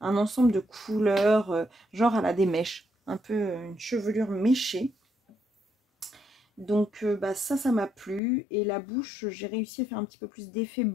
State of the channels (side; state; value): right; drops out; at 8.2 s